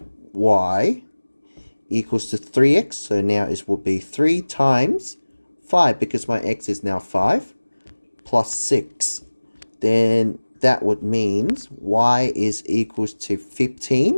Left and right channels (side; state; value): both; inverted; correlation -1.00